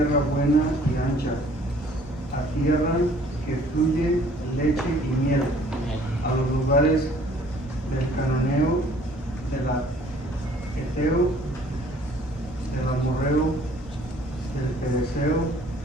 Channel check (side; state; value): both; normal; correlation 0.56